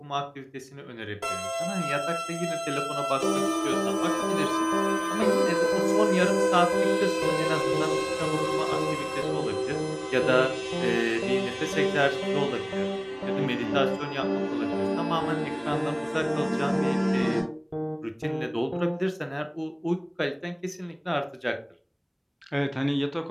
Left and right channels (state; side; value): identical; both; correlation 1.00